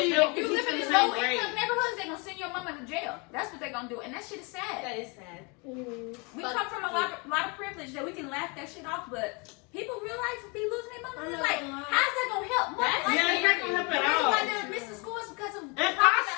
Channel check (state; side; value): quieter; right; 30.2 dB